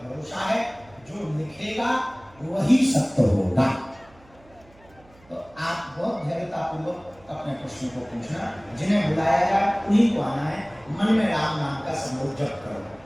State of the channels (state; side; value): noise; right; hum, 28 dB below the sound